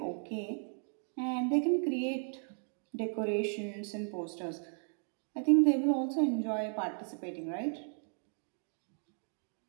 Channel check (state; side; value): silent; left; 54 dB below the other